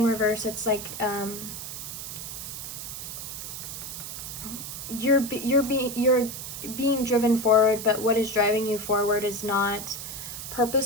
reverse. It's like you're being driven forward, but what is driving you forward is not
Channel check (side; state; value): right; noise; hiss, 8 dB below the sound